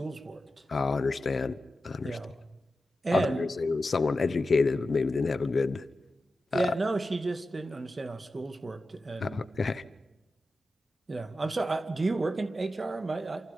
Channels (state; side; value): normal; both; correlation 0.92